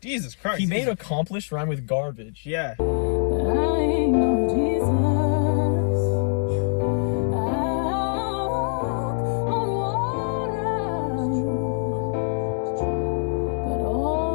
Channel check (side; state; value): right; silent; digital silence